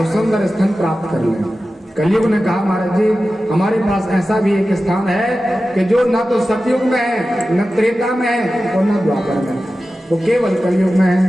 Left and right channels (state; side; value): normal; both; correlation 0.94